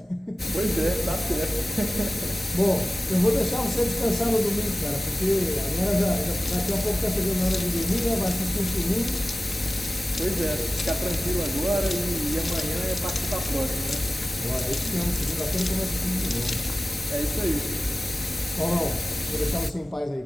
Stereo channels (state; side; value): normal; both; correlation 0.96